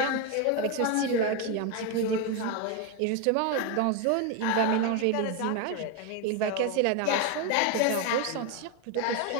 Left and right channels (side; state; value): both; different; correlation 0.02